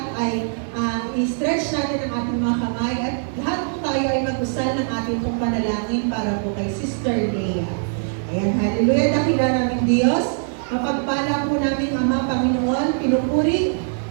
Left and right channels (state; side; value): silent; left; 64 dB below the other